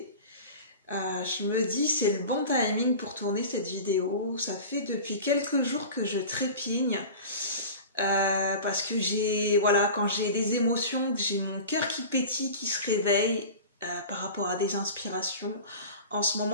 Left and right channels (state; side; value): inverted; both; correlation -0.34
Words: Je me dis, c'est le bon timing pour tourner cette vidéo. Ça fait depuis quelques jours que je trépigne. Parce que quand j'ai des émotions, que j'ai mon cœur qui pétille, qui se réveille par rapport à des inspirations. En ce